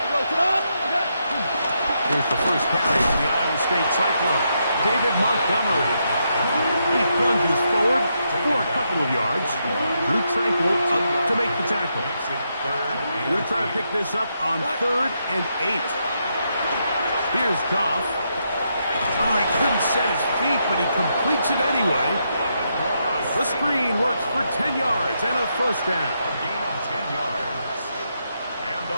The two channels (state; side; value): inverted; both; correlation -0.80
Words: Here's the first carry for the Iowa State Cyclone. David Montgomery. He plunges forward for a couple of yards. Drew Tranquill up to make the tackle. We're going to try to pick this up on 3rd and 8. Here's Goff. Oh, he couldn't set his feet, but he completes it anyway. The screen works for 10 yards and a 1st down. A gain of 10 yards. And